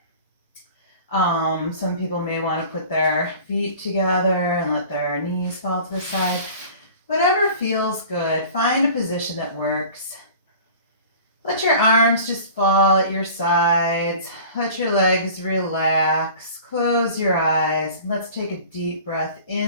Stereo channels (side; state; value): both; inverted; correlation -0.43